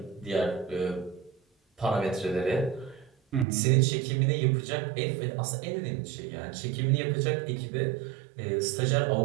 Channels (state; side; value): drops out; left; at 3.5 s